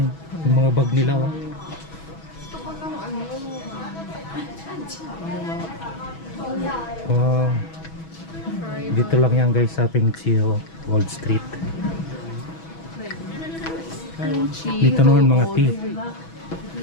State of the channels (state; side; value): late; right; 6.2 ms